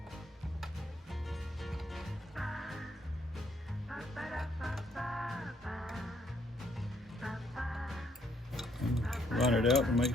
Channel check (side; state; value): both; normal; correlation 0.70